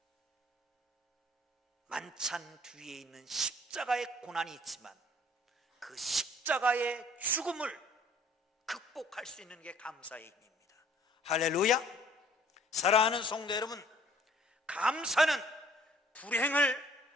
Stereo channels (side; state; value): both; normal; correlation 0.56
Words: 만찬 뒤에 있는 십자가의 고난이 있지만 그 십자가의 죽음을 극복할 수 있는 게 감사의 힘입니다. 할렐루야. 사랑하는 성도 여러분, 감사는 불행을